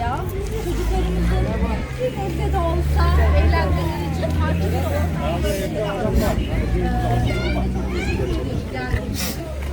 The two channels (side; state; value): both; identical; correlation 1.00